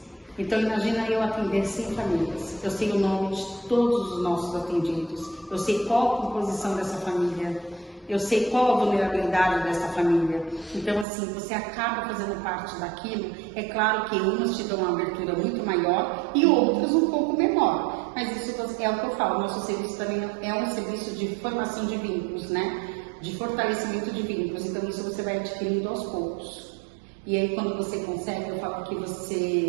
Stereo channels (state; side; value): drops out; left; at 11.1 s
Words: Então imagina eu atender 100 famílias, eu sei o nome de todos os nossos atendidos, eu sei qual a composição dessa família, eu sei qual a vulnerabilidade dessa família. Então, assim, você acaba fazendo parte daquilo. É claro que umas te dão uma abertura muito maior e outras um pouco menor. Mas isso é o que eu falo, nosso serviço também é um serviço de formação de vínculos, né? De fortalecimento de vínculos. Então, isso você vai adquirindo aos poucos. E aí, quando você consegue, eu falo que